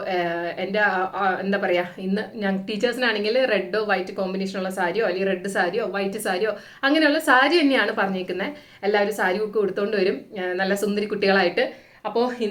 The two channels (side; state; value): both; identical; correlation 1.00